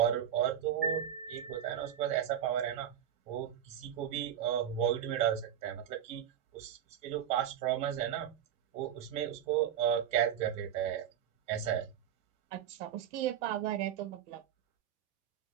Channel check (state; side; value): quieter; left; 9.8 dB